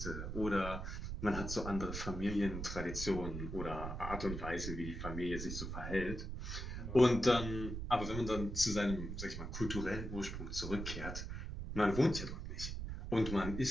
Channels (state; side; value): noise; right; rumble, 5 dB below the sound